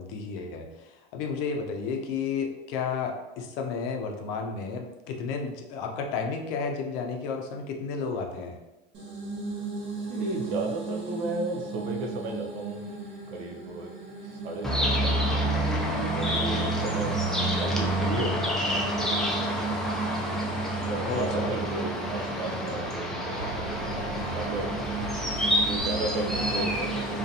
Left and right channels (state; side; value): normal; both; correlation 0.38